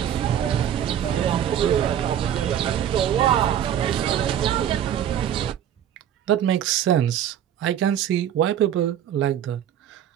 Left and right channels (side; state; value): left; quieter; 10.1 dB